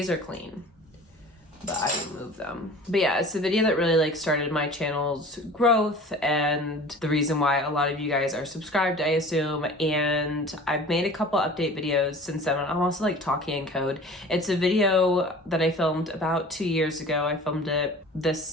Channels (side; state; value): both; normal; correlation 0.42